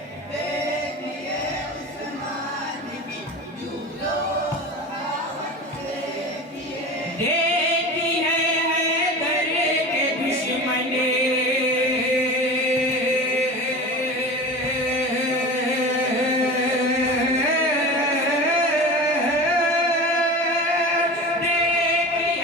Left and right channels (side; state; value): both; normal; correlation 0.32